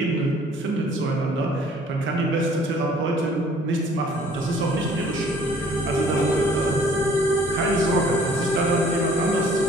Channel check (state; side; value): normal; both; correlation 0.55